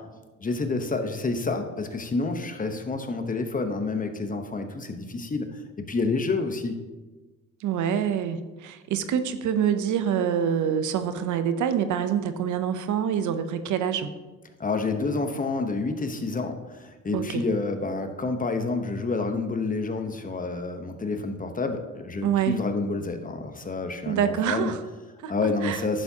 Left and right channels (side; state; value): both; normal; correlation 0.32